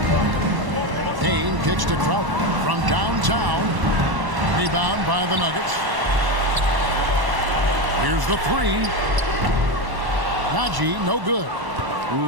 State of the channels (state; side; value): late; left; 1.1 ms